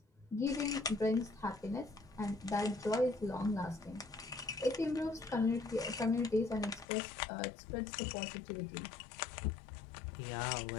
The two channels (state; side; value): drops out; right; at 6.9 s